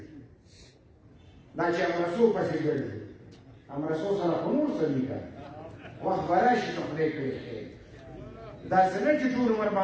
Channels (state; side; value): identical; both; correlation 1.00